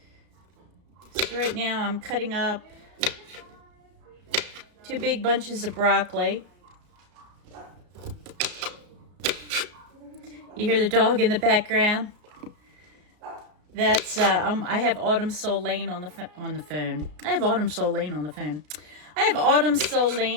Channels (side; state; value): left; late; 34 ms